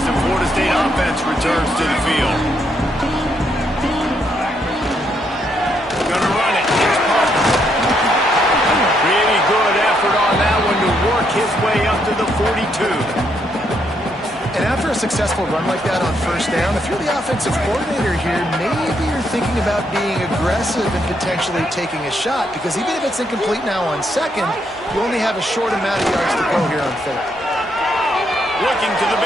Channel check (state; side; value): normal; both; correlation 0.75